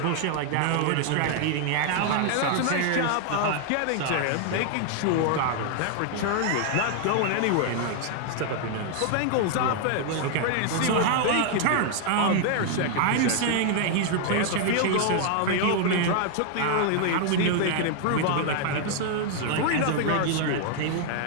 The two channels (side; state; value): both; different; correlation 0.00